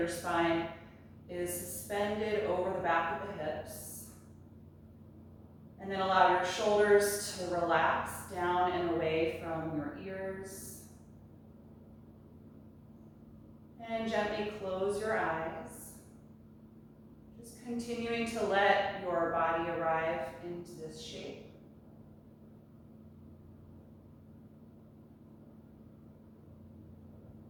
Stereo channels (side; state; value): both; identical; correlation 1.00